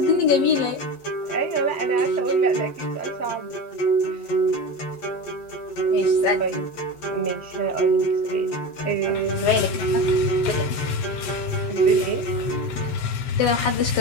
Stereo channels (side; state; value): right; late; 7.4 ms